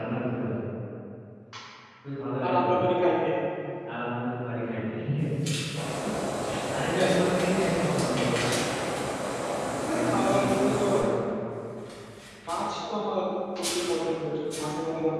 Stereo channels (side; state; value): both; identical; correlation 1.00